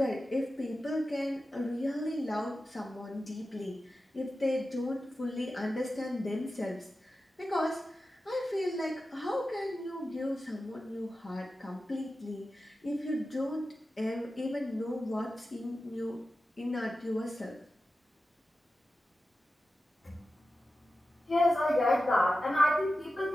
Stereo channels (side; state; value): both; normal; correlation 0.93